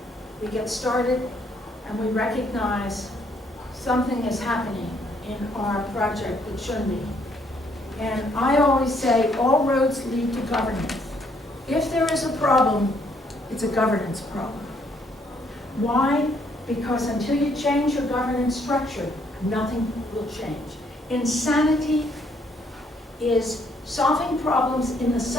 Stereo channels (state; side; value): normal; both; correlation 0.69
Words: we get started, and we recognize something is happening in our project that shouldn't be. And I always say all roads lead to governance. If there is a problem, it's a governance problem. Why? Because until you change your governance structure, nothing will change. Insanity is solving problems in the